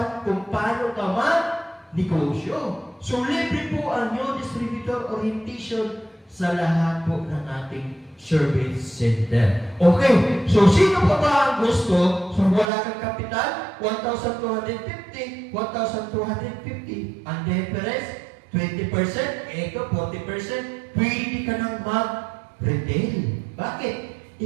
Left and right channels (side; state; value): left; drops out; at 12.7 s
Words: kung paano ka mag-negosyo. So, libre po ang new distributor orientation sa lahat po ng ating service center. Okay, so sino pa ba ang gusto? So, wala kang kapital, 1,250, 1,250. Ang difference, 20%, ito 40%, pwede ka nang mag-retail. Bakit?